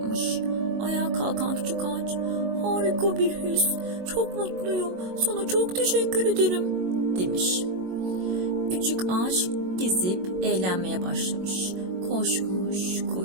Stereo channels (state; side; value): late; left; 22 ms